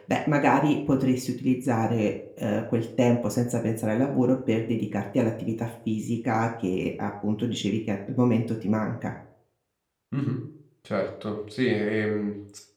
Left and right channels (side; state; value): both; identical; correlation 1.00